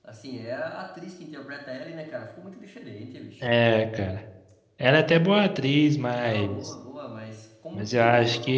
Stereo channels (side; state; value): both; identical; correlation 1.00